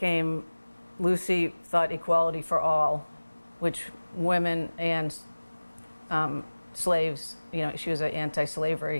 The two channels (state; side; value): inverted; both; correlation -1.00